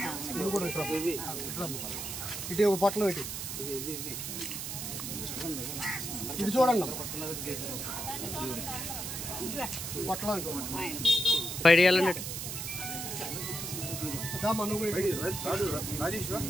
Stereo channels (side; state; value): right; noise; hiss, 5 dB below the sound